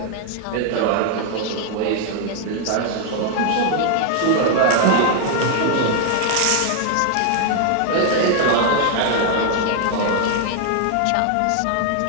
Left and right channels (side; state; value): both; different; correlation 0.00